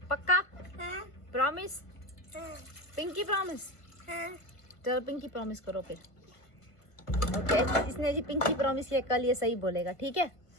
पक्का? हाँ प्रॉमिस? हाँ पिंकी प्रॉमिस? हाँ। चलो पिंकी प्रॉमिस करो फिर। ओके, इसने जी पिंकी प्रॉमिस किया, कल ये सही बोलेगा, ठीक है?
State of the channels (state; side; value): late; right; 1.5 ms